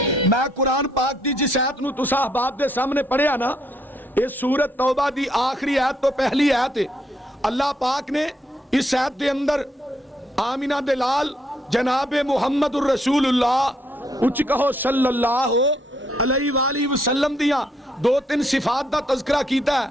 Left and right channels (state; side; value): normal; both; correlation 0.72